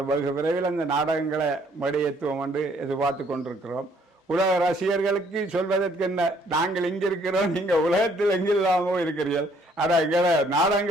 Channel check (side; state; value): both; normal; correlation 0.64